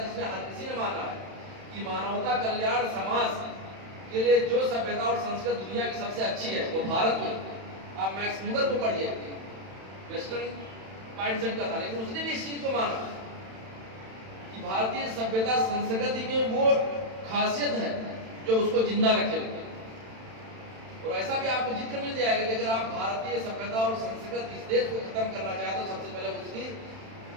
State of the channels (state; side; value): late; left; 31 ms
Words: जिसमें हर किसी ने माना है कि मानवता कल्याण समाज के लिए जो सभ्यता और संस्कृति दुनिया की सबसे अच्छी है वो भारत में। आप मैक्स मुलर को पढ़िए, वेस्टर्न माइंडसेट का था, लेकिन उसने भी इस चीज को माना कि भारतीय सभ्यता संस्कृति में वो खासियत है जो उसको जिंदा रखे हुए। और ऐसा भी आपको जिक्र मिल जाएगा कि अगर आप भारतीय सभ्यता और संस्कृति इस देश को खत्म करना चाहते हो, सबसे पहले उसकी